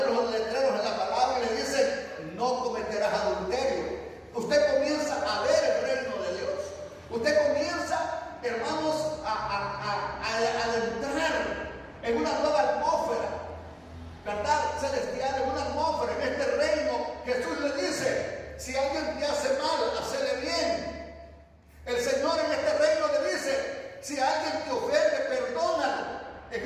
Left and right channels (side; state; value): both; identical; correlation 1.00